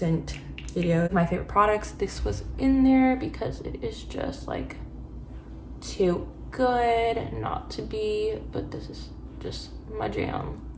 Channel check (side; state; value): both; identical; correlation 1.00